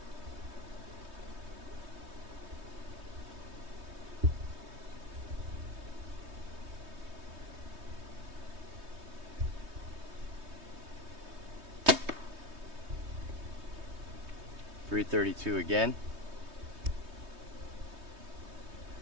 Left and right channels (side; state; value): left; late; 3.2 ms